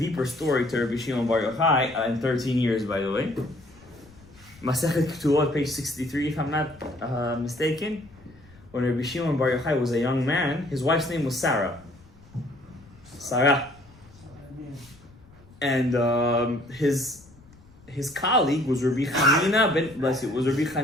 story to Rabbi Shimon Bar Yochai in 13 years, by the way. Masechet Ketubot, page 63, if I'm not mistaken. When Rabbi Shimon Bar Yochai was a young man, his wife's name was Sarah. And his colleague was Rabbi Chanina ben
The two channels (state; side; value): noise; left; rumble, 25 dB below the sound